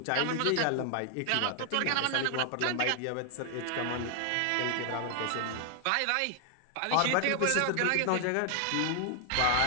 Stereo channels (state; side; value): different; both; correlation 0.00